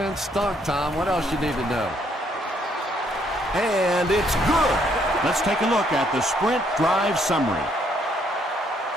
stunk, Tom. What else you need to know? And it's good. Let's take a look at the sprint drive summary.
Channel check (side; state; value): both; normal; correlation 0.69